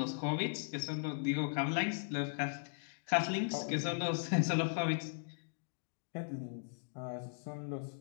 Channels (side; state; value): right; silent; digital silence